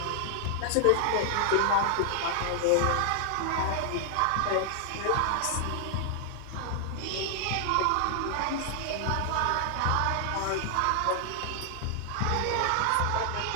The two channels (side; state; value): both; different; correlation 0.00